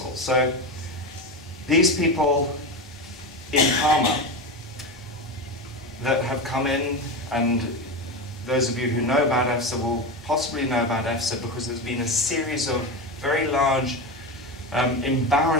So these people in Parma that have come in, and those of you who know about EFSA will possibly know about EFSA because there's been a series of very large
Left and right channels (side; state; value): both; normal; correlation 0.19